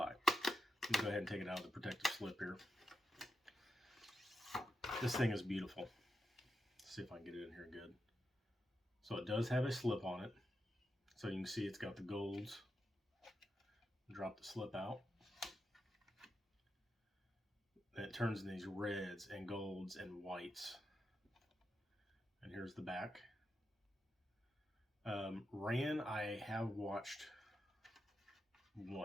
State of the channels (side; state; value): both; normal; correlation 0.86